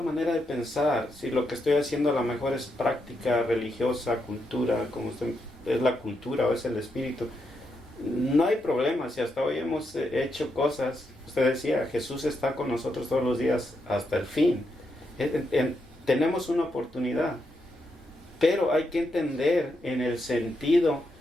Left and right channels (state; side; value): normal; both; correlation 0.82